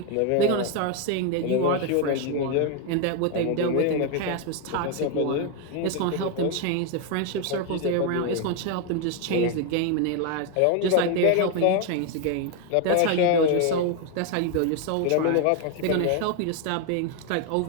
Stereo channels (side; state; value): both; different; correlation 0.01